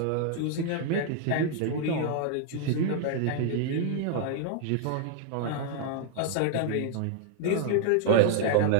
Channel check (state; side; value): different; both; correlation 0.00